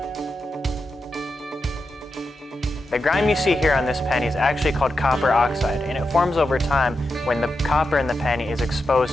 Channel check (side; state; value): both; normal; correlation 0.88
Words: The grime you see here on this penny is actually called copper oxide, and it forms over time when the copper in the penny is